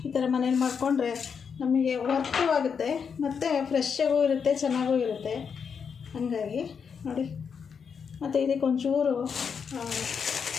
ಈ ಥರ ಮನೇಲಿ ಮಾಡಿಕೊಂಡ್ರೆ ನಮಗೆ ವರ್ಕು ಆಗುತ್ತೆ ಮತ್ತು ಫ್ರೆಶ್ಶಾಗೂ ಇರುತ್ತೆ, ಚೆನ್ನಾಗೂ ಇರುತ್ತೆ. ಹಾಗಾಗಿ ನೋಡಿ. ಮತ್ತು ಇದಕ್ಕೆ ಒಂಚೂರು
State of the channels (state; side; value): quieter; right; 6.5 dB